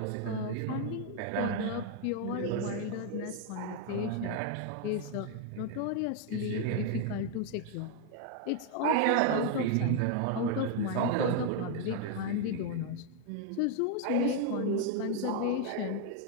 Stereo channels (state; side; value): different; both; correlation 0.01